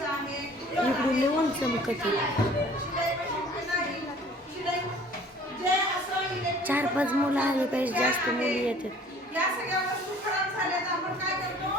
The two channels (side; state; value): both; normal; correlation 0.51